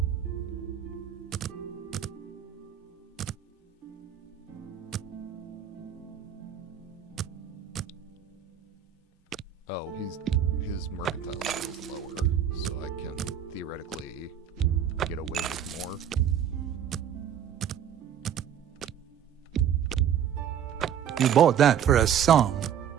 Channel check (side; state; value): left; quieter; 9.1 dB